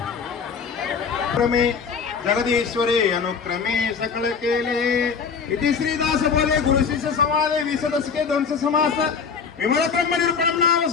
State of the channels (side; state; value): right; quieter; 5.9 dB